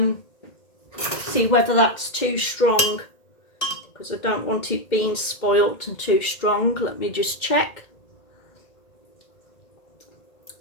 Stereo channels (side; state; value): right; late; 2.1 ms